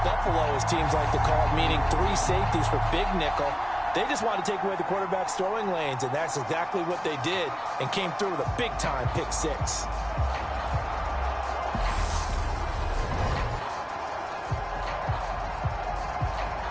Buffalo, as teams like to call it, meaning 3 safeties for big nickel. They just wanted to take away the quarterback's throwing lanes, and that's exactly what they did and came through with a big-time pick 6.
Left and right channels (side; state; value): both; identical; correlation 1.00